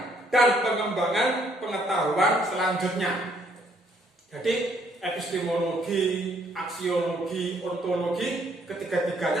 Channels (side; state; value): both; normal; correlation 0.67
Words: dan pengembangan pengetahuan selanjutnya. Jadi epistemologi, aksiologi, ontologi,